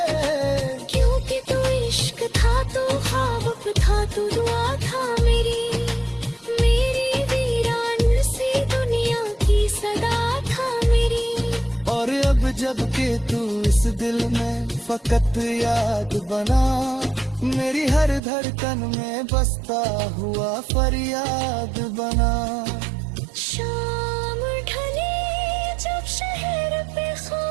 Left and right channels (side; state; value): left; drops out; at 18.2 s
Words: क्योंकि तू इश्क था, तू ख्वाब था, तू दुआ था मेरी, मेरी वीरान सी दुनिया की सदा था मेरी। और अब जब के तू इस दिल में फकत याद बना, मेरी हर धड़कन में बसता हुआ फरियाद बना। शाम ढले जब शहर पे